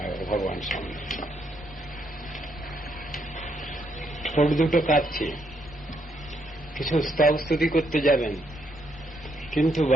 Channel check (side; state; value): both; normal; correlation 0.75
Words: ভগবান সামনে। ঠোঁট দুটো কাঁপছে, কিছু স্তব স্তুতি করতে যাবেন, কিন্তু